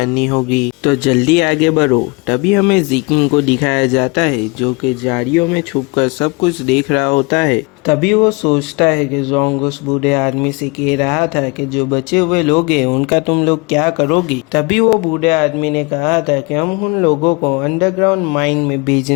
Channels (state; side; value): quieter; right; 27.9 dB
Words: होगी, तो जल्दी आगे बढ़ो। तभी हमें ज़िकिंग को दिखाया जाता है जो कि झाड़ियों में छुपकर सब कुछ देख रहा होता है। तभी वो सोचता है कि जोंग उस बूढ़े आदमी से कह रहा था कि जो बचे हुए लोग हैं उनका तुम लोग क्या करोगे। तभी वो बूढ़े आदमी ने कहा था कि हम उन लोगों को अंडरग्राउंड माइन में